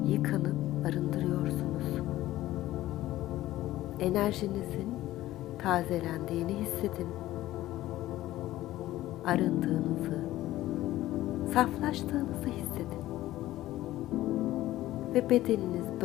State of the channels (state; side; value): quieter; right; 15.4 dB